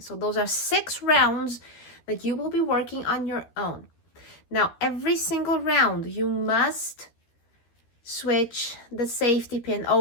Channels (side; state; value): right; late; 13 ms